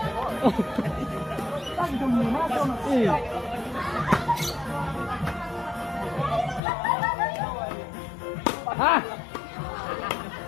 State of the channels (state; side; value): drops out; right; at 6.6 s